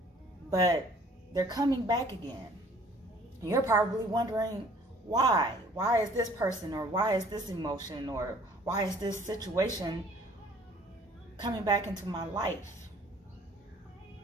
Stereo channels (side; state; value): both; normal; correlation 0.55